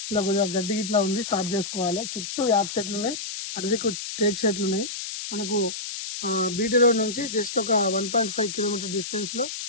ఇలా కొద్దిగా గడ్డి ఇట్లా ఉంది, స్టార్ట్ చేసుకోవాలి. చుట్టూ యాప్ చెట్లు ఉన్నాయి, అరదికు టేక్ చెట్లు ఉన్నాయి. మనకు బీటీ రోడ్ నుంచి జస్ట్ ఒక 1.5 కిలోమీటర్ డిస్టెన్స్ లో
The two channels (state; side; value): noise; left; hiss, 7 dB below the sound